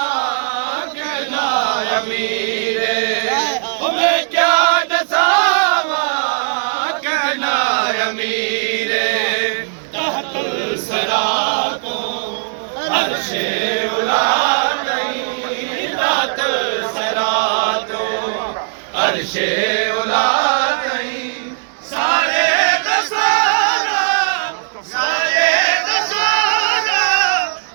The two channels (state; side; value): silent; left; digital silence